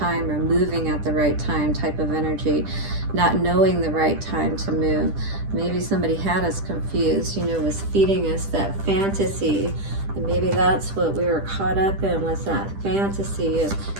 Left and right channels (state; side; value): late; left; 10 ms